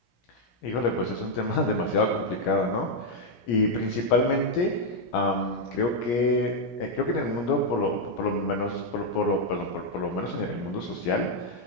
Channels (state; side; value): late; right; 17 ms